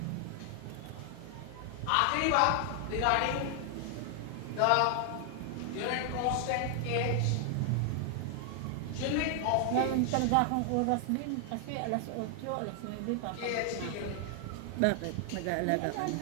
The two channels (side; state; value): both; different; correlation 0.00